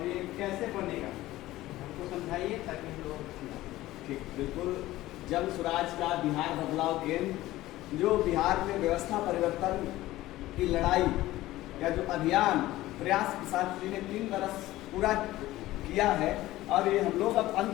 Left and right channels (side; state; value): right; quieter; 16.5 dB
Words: ये कैसे बनेगा हमको समझाइए ताकि हम लोग समझाएं। ठीक, बिल्कुल। जन स्वराज का बिहार बदलाव केंद्र जो बिहार में व्यवस्था परिवर्तन की लड़ाई या जो अभियान प्रयास किसान जी ने 3 बरस पूरा किया है और ये हम लोग अब